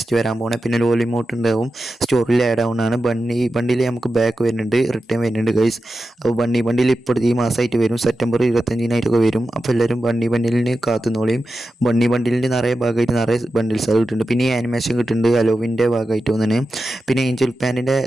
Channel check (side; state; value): both; normal; correlation 0.91